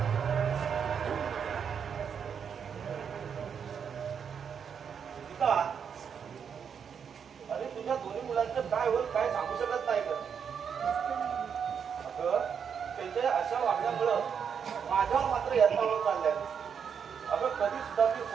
अरे तुझ्या दोन्ही मुलांचं काय होईल काय सांगू शकत नाही का? अगं त्यांच्या अशा वागण्यामुळं माझ्यावर मात्र यत्नावर चाललंय. अगं कधी सुद्धा मी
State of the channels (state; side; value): quieter; left; 7.2 dB